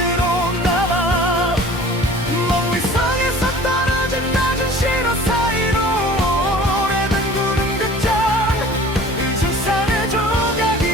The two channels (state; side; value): normal; both; correlation 0.45